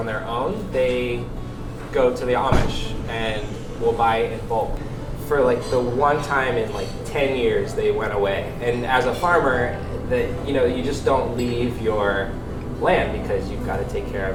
their own, they go to the Amish and will buy in bulk. For like the one time in like 10 years they went away. And as a farmer, you just don't leave your land because you've got to take care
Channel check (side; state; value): both; identical; correlation 1.00